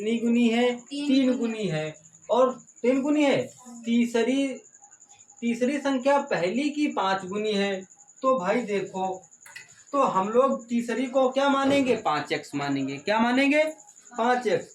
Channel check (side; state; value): both; identical; correlation 1.00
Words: गुनी है? तीन गुनी है। और तीन गुनी है। तीसरी संख्या पहली की 5 गुनी है। तो भाई देखो, तो हम लोग तीसरी को क्या मानेंगे? 5x मानेंगे। क्या मानेंगे? 5x।